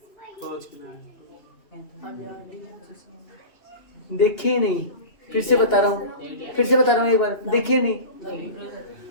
देखे नहीं, फिर से बता रहा हूँ एक बार, देखे नहीं।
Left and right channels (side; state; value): right; late; 2.9 ms